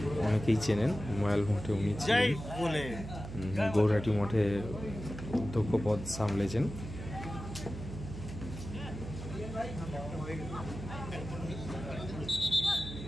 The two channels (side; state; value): right; noise; hum, 9 dB below the sound